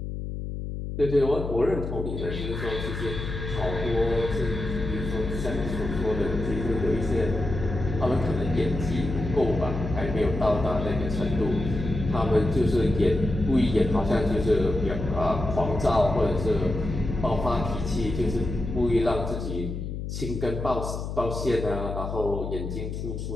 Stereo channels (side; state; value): left; noise; hum, 5 dB below the sound